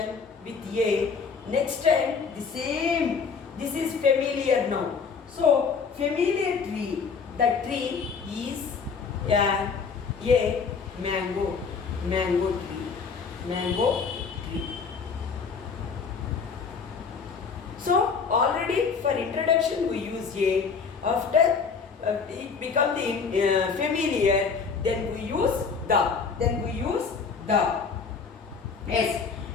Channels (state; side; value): quieter; right; 5.4 dB